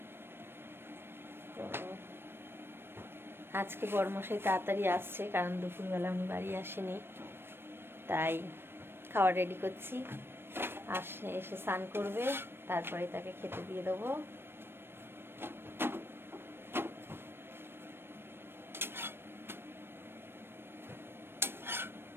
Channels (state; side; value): late; left; 0.11 ms